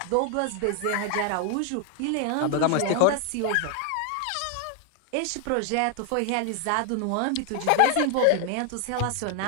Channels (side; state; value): both; different; correlation 0.00